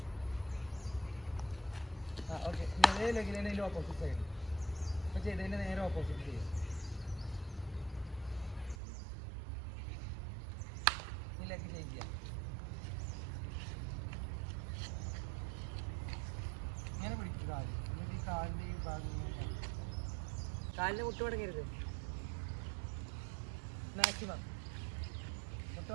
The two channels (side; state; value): left; drops out; at 8.8 s